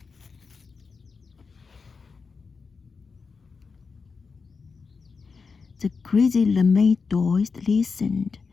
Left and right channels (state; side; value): quieter; right; 4.9 dB